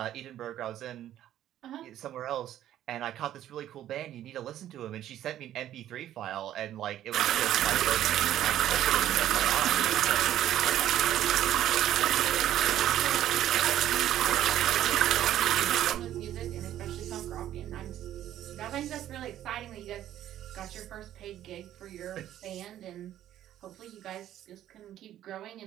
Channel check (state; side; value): quieter; left; 12.1 dB